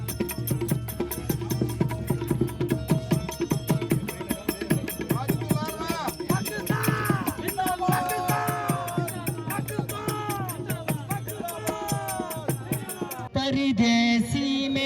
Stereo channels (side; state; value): both; identical; correlation 1.00